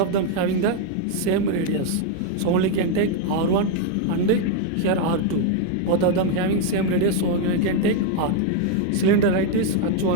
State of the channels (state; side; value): different; both; correlation 0.01